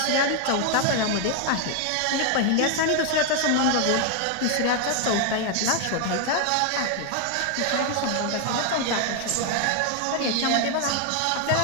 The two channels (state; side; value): different; both; correlation 0.01